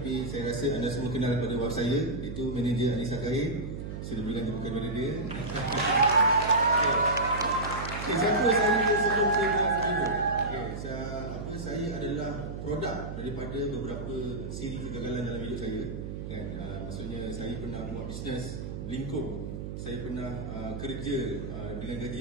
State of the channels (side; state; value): right; noise; hum, 7 dB below the sound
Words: saya rasa anda semua kenal pada web saya, itu manager Anissa Kair. Sudah bilang bukan manager. Siapa saya sebelum saya buat Forever? Saya adalah produk daripada beberapa siri kegagalan dalam hidup saya. Kan? Maksudnya saya pernah buat bisnes lingkup, saya pernah kerja dengan gaji